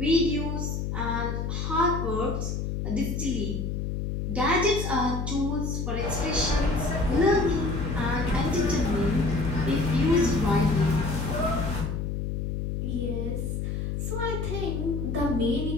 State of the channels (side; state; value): left; noise; hum, 2 dB below the sound